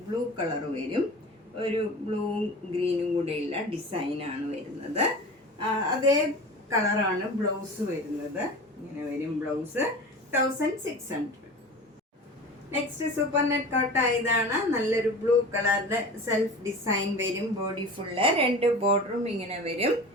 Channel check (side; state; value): both; normal; correlation 0.35